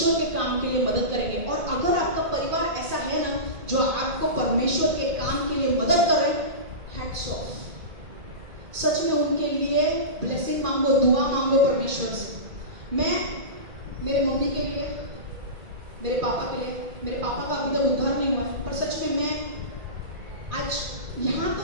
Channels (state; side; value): late; left; 2.4 ms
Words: के काम के लिए मदद करेंगे, और अगर आपका परिवार ऐसा है ना जो आपको परमेश्वर के काम के लिए मदद करे, हैट्स ऑफ। सच में उनके लिए ब्लेसिंग मांगो, दुआ मांगो परमेश्वर से। मैं मेरे मम्मी के लिए, मेरे पापा के लिए, मेरे पापा का अभी तक उद्धार नहीं हुआ, पर सच में मैं आज यहाँ